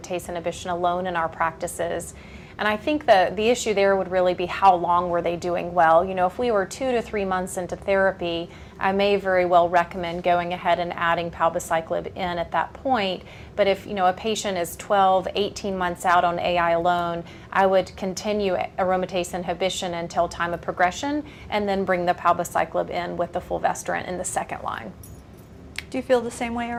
inhibition alone in our practices. And I think the issue there would really be how long were they doing well. If we were 2 to 3 months into therapy, I may very well recommend going ahead and adding palbociclib in at that point. But if a patient is 12, 18 months out on AI alone, I would continue aromatase inhibition until time of progression and then bring the palbociclib in with the fulvestrant in the second line. Do you feel the same way,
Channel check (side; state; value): both; identical; correlation 1.00